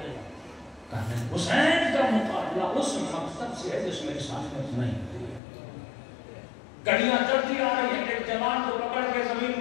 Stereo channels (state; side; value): drops out; right; at 5.4 s